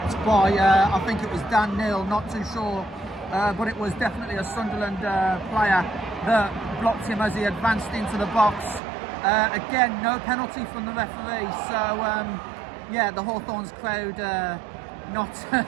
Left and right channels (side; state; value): left; drops out; at 8.8 s